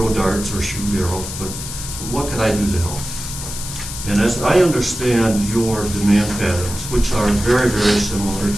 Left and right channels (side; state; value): left; noise; hiss, 9 dB below the sound